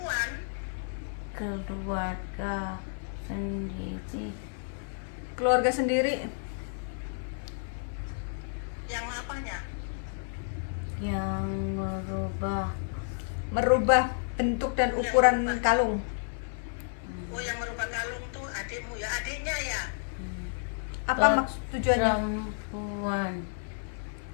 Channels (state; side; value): silent; right; 57 dB below the other